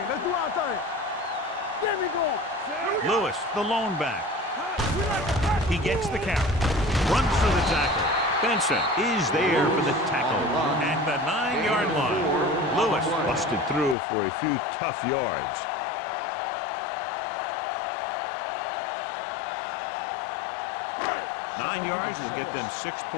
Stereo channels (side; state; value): right; drops out; at 14.0 s